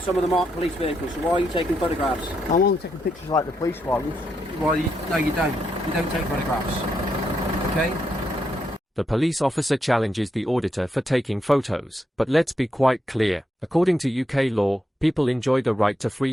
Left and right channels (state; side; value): normal; both; correlation 0.81